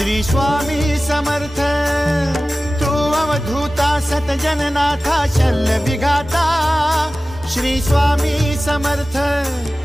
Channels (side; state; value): both; normal; correlation 0.96